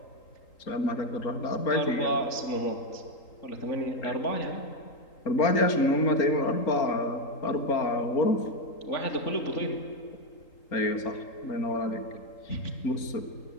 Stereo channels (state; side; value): late; right; 3.8 ms